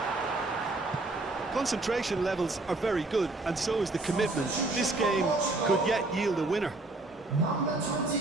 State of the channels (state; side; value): quieter; left; 3.0 dB